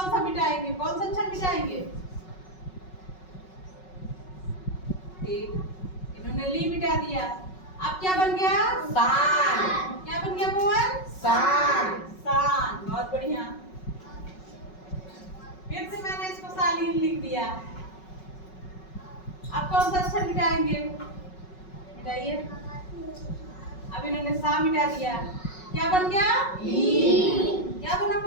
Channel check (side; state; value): right; late; 5.4 ms